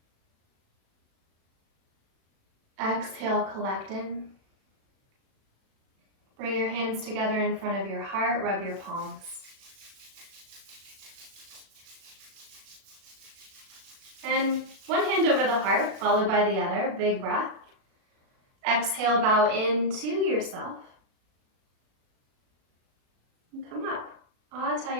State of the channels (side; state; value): left; late; 36 ms